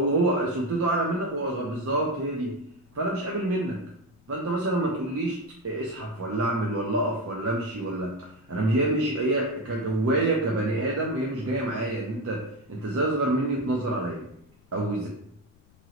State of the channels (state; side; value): noise; left; rumble, 30 dB below the sound